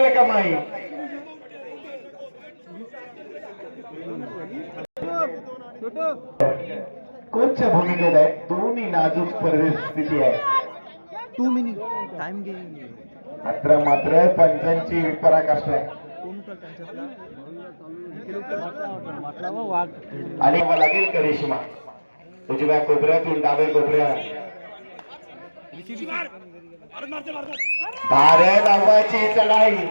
कमाई. कोचच्या भूमिकेत आहे. दोन्ही नाजूक परिस्थिती आहे. 2 मिनिट टाइम घे. मात्र पंचांची पराकाष्ठा आहे. आणि लागेल करिश्मा उजव्या कोपऱ्यातून डाव्या कोपऱ्यात. भारत आव्हाची चढाई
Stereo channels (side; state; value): both; inverted; correlation -1.00